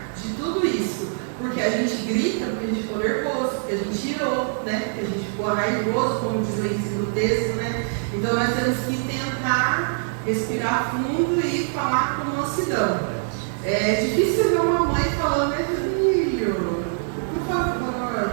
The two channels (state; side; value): silent; left; 63 dB below the other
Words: de tudo isso. Porque a gente grita, porque a gente ficou nervoso, porque a gente irou, né? Porque a gente ficou raivoso, como diz o ensino do texto, né? Então nós temos que tentar respirar fundo e falar com mansidão. É difícil ver uma mãe falando, meu filho, por